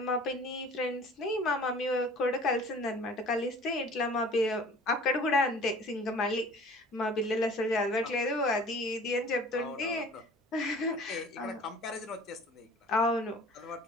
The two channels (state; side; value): normal; both; correlation 0.47